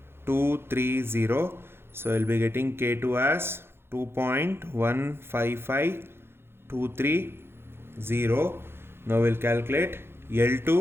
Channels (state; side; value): late; left; 0.11 ms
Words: So I'll be getting K2 as 2.155230. Now we'll calculate